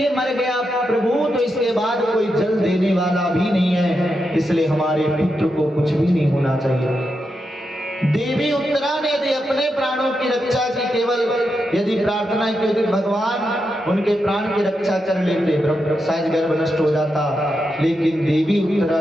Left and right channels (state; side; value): normal; both; correlation 0.86